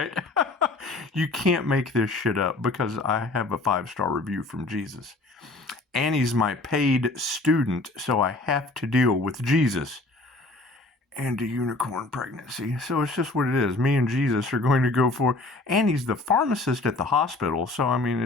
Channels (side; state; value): right; quieter; 3.0 dB